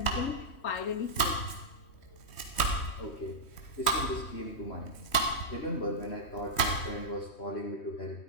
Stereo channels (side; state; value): right; late; 3.1 ms